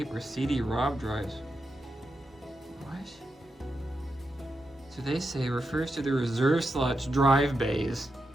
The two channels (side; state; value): both; normal; correlation 0.86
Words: or CD-ROM drives. What? So they say refers to the reserve slots drive bays